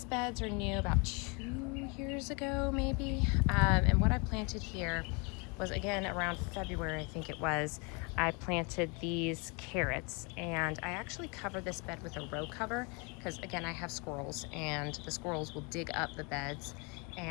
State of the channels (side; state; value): right; quieter; 31.5 dB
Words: beds are new about 2 years ago, maybe. And what I planted here was, again, around February, I think it was. I planted these carrots, and I actually covered this bed with a row cover because, again, I have squirrels, and the squirrels will dig up the beds,